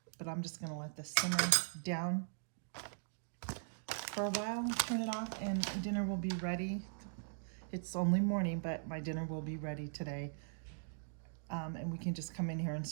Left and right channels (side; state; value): left; silent; digital silence